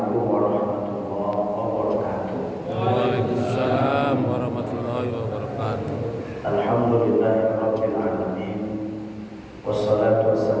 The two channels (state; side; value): identical; both; correlation 1.00